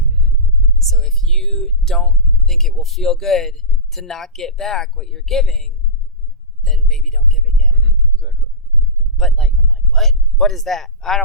So if you don't think it will feel good to not get back what you're giving, then maybe don't give it yet. Exactly. But like, I'm like, what? What is that? I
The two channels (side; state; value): both; normal; correlation -0.17